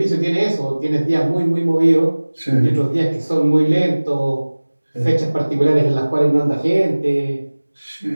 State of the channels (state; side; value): inverted; both; correlation -1.00